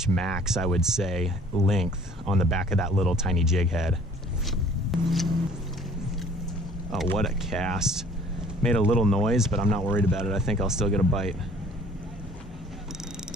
max, I would say, length on the back of that little tiny jig head. Oh, what a cast. Made a little noise, but I'm not worried about it. I think I'll still get a bite.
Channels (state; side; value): normal; both; correlation 0.54